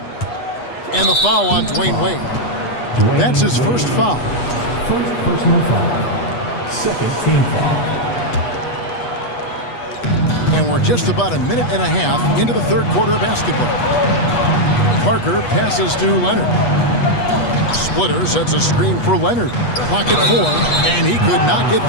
And the foul on Dwayne Wade. That's his first foul. First personal foul. Second team foul. And we're just about a minute and a half into the third quarter of basketball. Parker passes to Leonard. Splitter sets a screen for Leonard. Clock at 4, and he could not get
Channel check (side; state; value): right; late; 8.3 ms